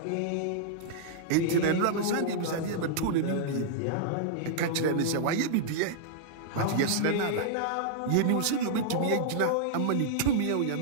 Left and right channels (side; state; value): both; different; correlation -0.02